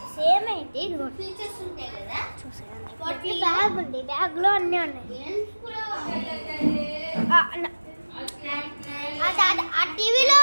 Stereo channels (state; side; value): inverted; both; correlation -1.00